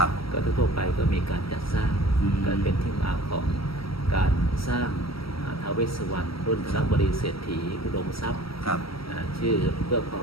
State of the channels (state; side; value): late; right; 0.75 ms